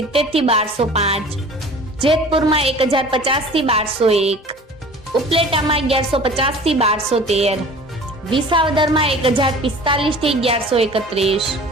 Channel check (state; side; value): normal; both; correlation 0.44